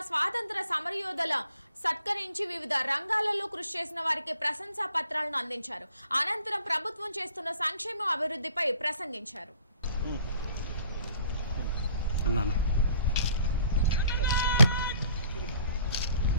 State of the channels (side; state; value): both; inverted; correlation -0.56